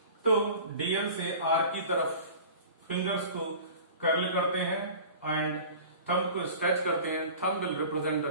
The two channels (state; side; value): inverted; both; correlation -0.41